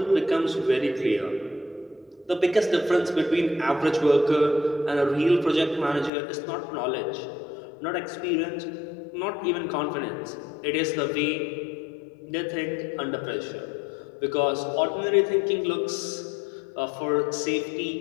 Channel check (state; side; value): drops out; right; at 6.1 s